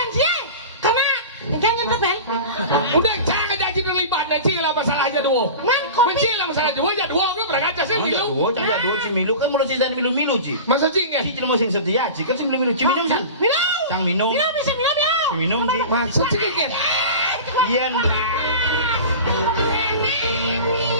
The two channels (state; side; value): inverted; both; correlation -0.33